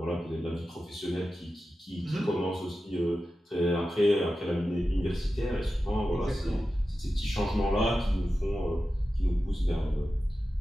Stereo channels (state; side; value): normal; both; correlation 0.93